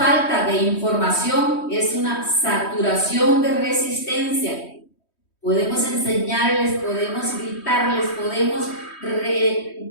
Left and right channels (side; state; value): right; late; 3.1 ms